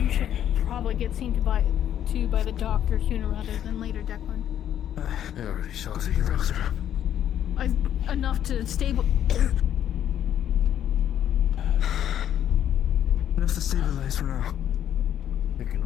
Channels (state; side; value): quieter; right; 10.4 dB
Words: should probably get seen to by the doctor sooner rather than later, Declan. I already saw the Enough to stable. Enough to stabilize for now.